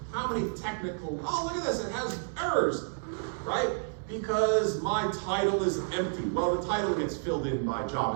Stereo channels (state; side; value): silent; left; digital silence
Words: How many technical, oh, look at this, it has errors, right? Because my title is empty. Well, the title gets filled in by